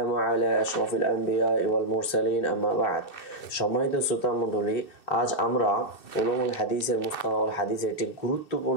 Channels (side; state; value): right; late; 2.6 ms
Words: على أشرف الأنبياء والمرسلين أما بعد সম্মানিত শ্রোতা মণ্ডলী আজ আমরা উলুমুল হাদিসের মুস্তালাহুল হাদিসের একটি